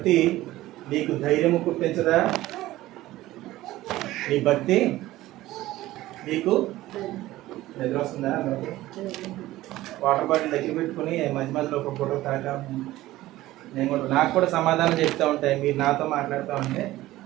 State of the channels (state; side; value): quieter; left; 16.3 dB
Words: నీకు ధైర్యము పుట్టించదా? నీ భక్తి నీకు నిద్ర వస్తుందా? వాటర్ బాటిల్ దగ్గర పెట్టుకుని మధ్య మధ్యలో ఒక ఫోటో తాగా నేను కూడా నాకు కూడా సమాధానం చెప్తూ ఉంటాయి. మీరు నాతో మాట్లాడుతూ ఉంటే